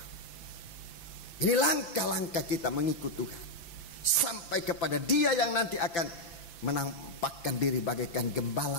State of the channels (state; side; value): late; right; 5.9 ms